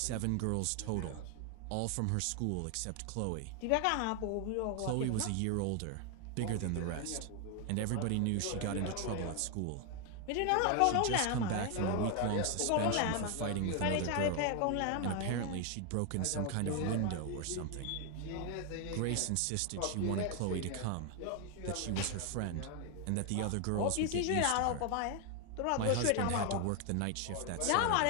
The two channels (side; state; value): both; different; correlation 0.01